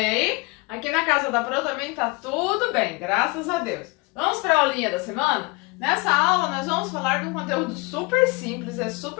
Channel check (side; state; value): right; quieter; 26.7 dB